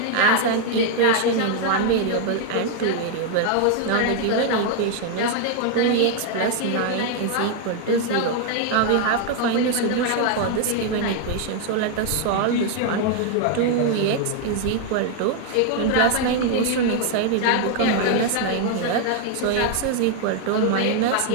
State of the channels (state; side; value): different; both; correlation 0.00